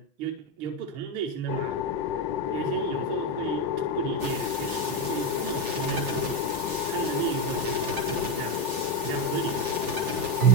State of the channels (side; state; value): left; late; 6.1 ms